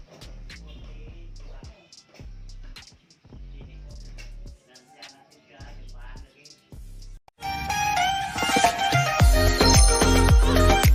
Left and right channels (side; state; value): both; identical; correlation 1.00